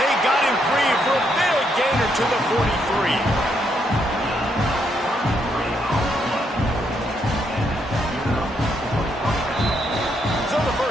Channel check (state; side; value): normal; both; correlation 0.76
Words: got him free for a big gainer to the 43.